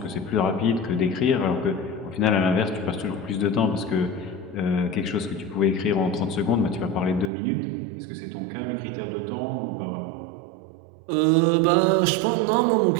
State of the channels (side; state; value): left; drops out; at 7.3 s